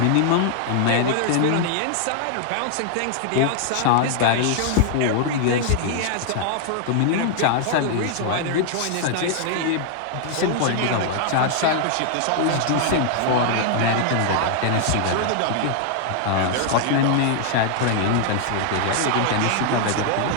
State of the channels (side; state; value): both; different; correlation 0.00